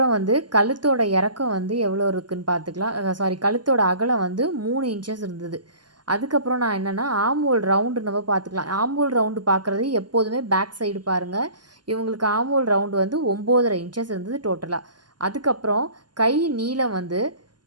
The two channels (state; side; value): late; left; 0.71 ms